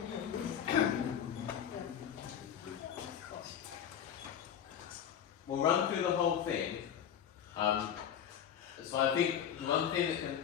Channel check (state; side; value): quieter; right; 9.1 dB